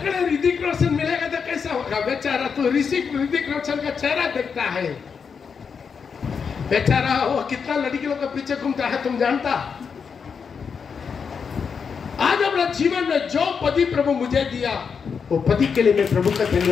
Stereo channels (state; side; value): quieter; right; 6.1 dB